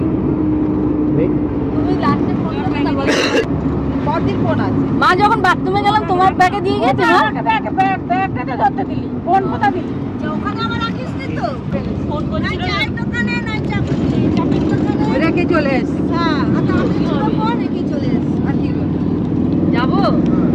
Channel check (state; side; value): identical; both; correlation 1.00